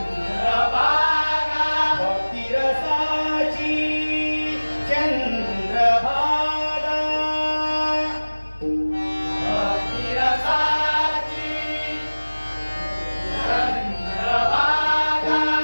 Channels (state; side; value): inverted; both; correlation -1.00